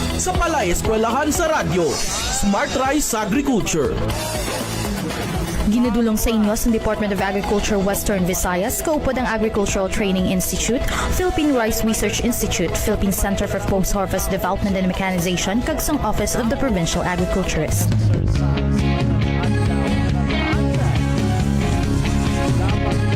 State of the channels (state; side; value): identical; both; correlation 1.00